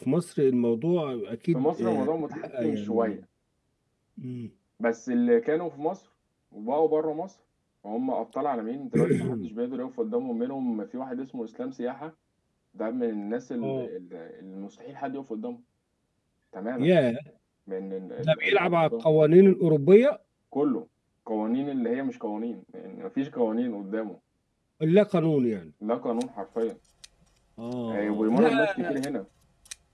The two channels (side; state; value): both; identical; correlation 1.00